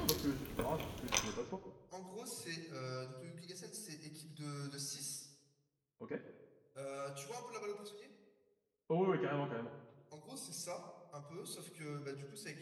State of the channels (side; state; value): both; identical; correlation 1.00